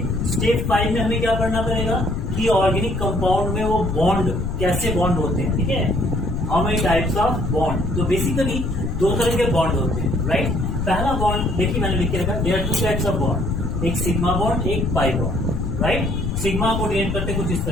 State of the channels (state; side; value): noise; left; rumble, 2 dB below the sound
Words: स्टेप 5 में हमें क्या करना पड़ेगा कि ऑर्गेनिक कंपाउंड में वो बॉन्ड कैसे बॉन्ड होते हैं। ठीक है, how many types of bond. तो बेसिकली 2 तरह के बॉन्ड होते हैं, राइट। पहला बॉन्ड देखिए मैंने लिख के रखा, there are 2 types of bond, एक सिग्मा बॉन्ड, एक पाई बॉन्ड, राइट। सिग्मा को डिनोट करते कुछ इस